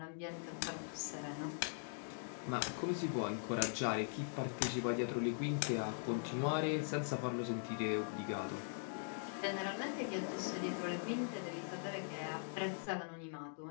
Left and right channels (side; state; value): right; silent; digital silence